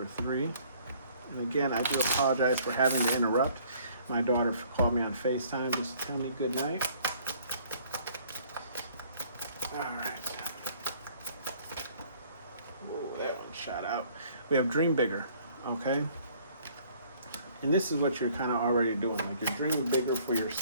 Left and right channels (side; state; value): both; inverted; correlation -0.58